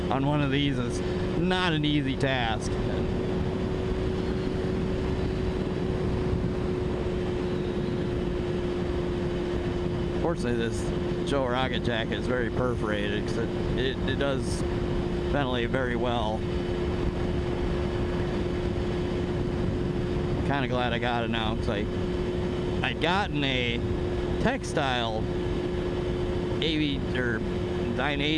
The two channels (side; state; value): both; identical; correlation 1.00